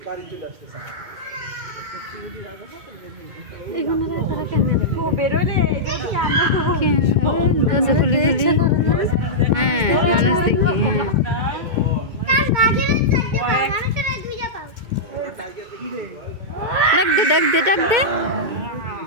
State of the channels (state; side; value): late; left; 2.2 ms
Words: দরজা খুলি খুলি হ্যাঁ মানুষ দেখি হ্যাঁ ডাক দে ডাক দে ডাক দে